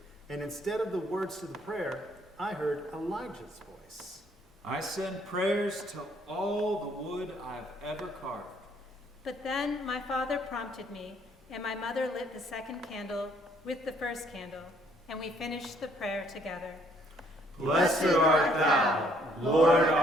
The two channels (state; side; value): normal; both; correlation 0.65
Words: And instead of the words to the prayer, I heard Elijah's voice. I send prayers to all the wood I've ever carved. But then my father prompted me, and my mother lit the second candle with the first candle, and we finished the prayer together. Blessed art thou, Lord